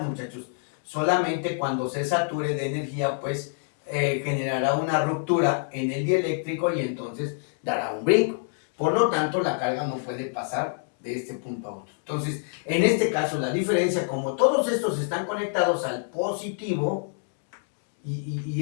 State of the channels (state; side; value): silent; right; digital silence